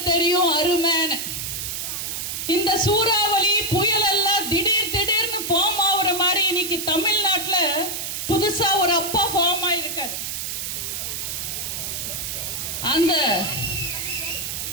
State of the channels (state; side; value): noise; right; hiss, 4 dB below the sound